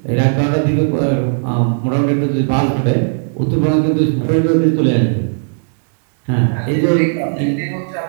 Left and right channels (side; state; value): left; silent; digital silence